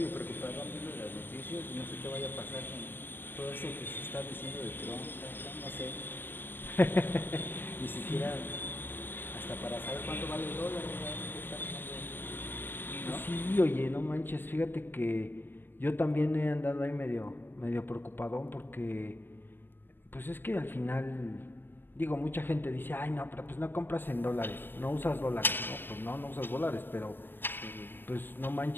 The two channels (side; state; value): right; late; 0.096 ms